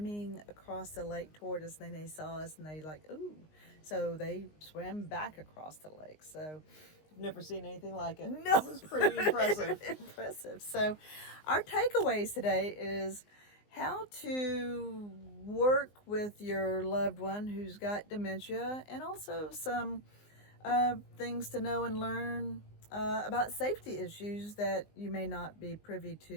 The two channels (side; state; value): right; late; 19 ms